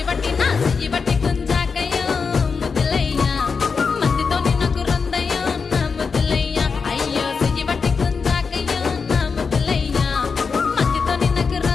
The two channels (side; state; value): right; quieter; 5.3 dB